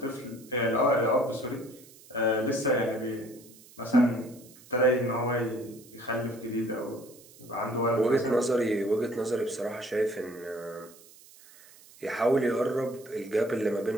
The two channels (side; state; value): right; noise; hiss, 23 dB below the sound